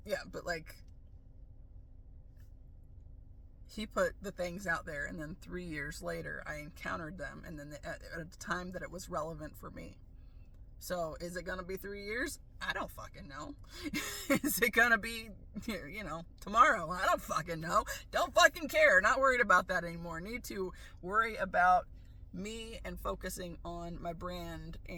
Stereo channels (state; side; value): identical; both; correlation 1.00